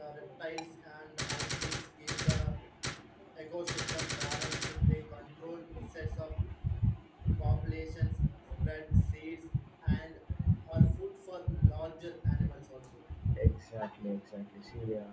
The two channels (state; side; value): identical; both; correlation 1.00